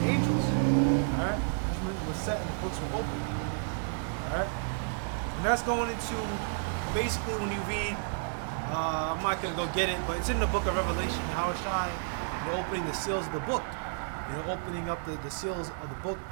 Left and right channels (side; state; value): left; silent; digital silence